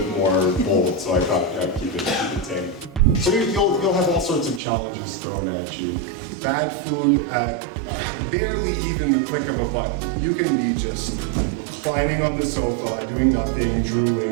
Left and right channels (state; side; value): drops out; left; at 4.6 s